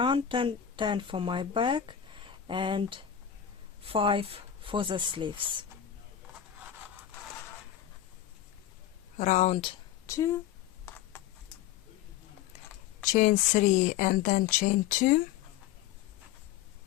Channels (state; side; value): quieter; right; 10.2 dB